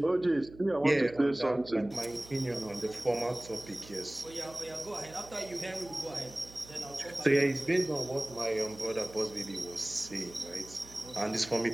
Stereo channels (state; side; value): noise; right; hum, 19 dB below the sound